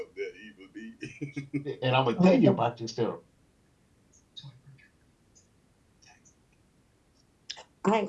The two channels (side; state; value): both; identical; correlation 1.00